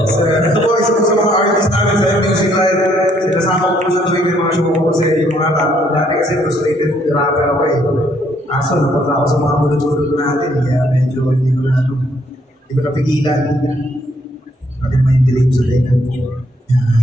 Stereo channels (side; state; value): both; normal; correlation 0.68